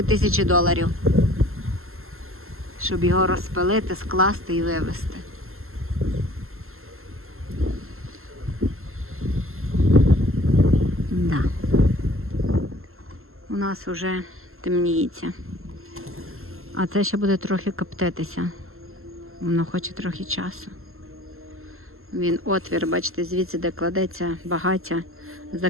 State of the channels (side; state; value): left; late; 0.62 ms